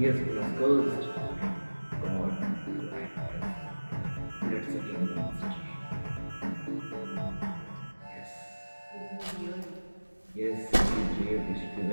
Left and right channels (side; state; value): both; inverted; correlation -1.00